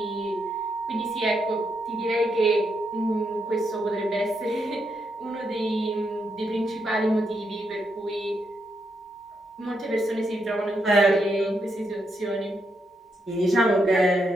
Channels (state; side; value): normal; both; correlation 0.81